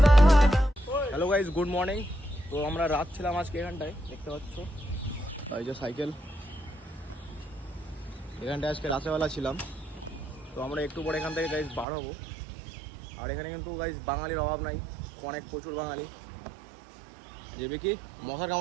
Hello guys, good morning. তো আমরা রাত ছিলাম আজকে এখানটায়, দেখতে পাচ্ছ এই যে সাইকেল, এখানটায় আজকে রাতেরবেলা ছিলাম। তো আমরা একটু পরে এখান থেকে গাইস বার হবো। আর এখানে কিন্তু গাইস বাঙালির অভাব নাই, অনেক প্রচুর বাঙালি। যাবে কি মশার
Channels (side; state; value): left; drops out; at 11.9 s